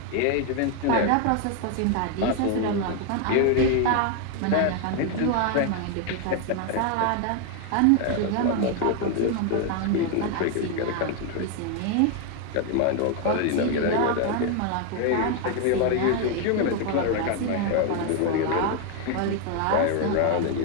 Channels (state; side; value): different; both; correlation 0.01